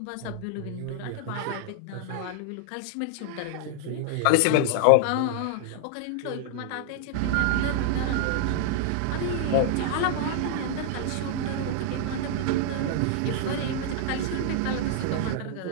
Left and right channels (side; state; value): both; different; correlation -0.01